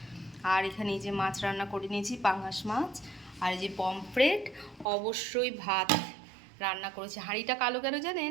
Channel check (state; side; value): drops out; left; at 4.9 s